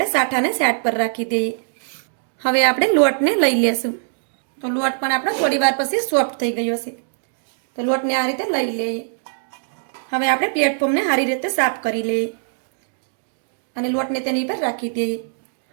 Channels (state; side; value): silent; left; digital silence